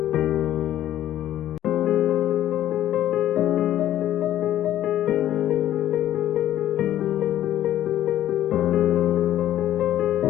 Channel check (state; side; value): quieter; right; 12.4 dB